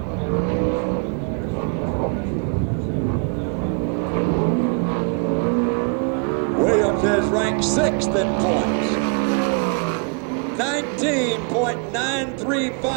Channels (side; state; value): left; quieter; 39.9 dB